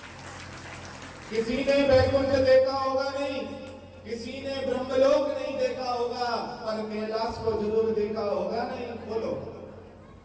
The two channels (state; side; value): identical; both; correlation 1.00